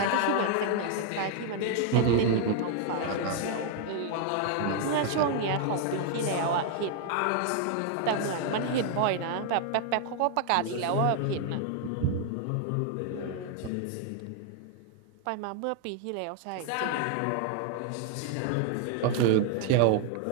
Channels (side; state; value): both; different; correlation 0.00